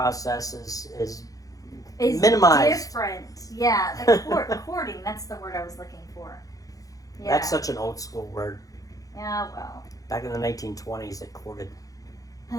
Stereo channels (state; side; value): late; right; 0.17 ms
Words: is minimized. Different. Yeah, the courting, that's the word I was looking for. Yeah. That's such an old school word. Yeah, well. Back in the 1920s, it courted.